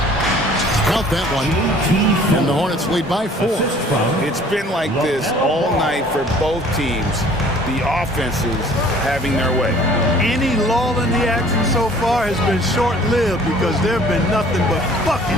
Count that one. And the Hornets lead by 4. It's been like this all night for both teams. the offenses having their way. Any lull in the action so far has been short-lived because there have been nothing but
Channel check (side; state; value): both; normal; correlation 0.53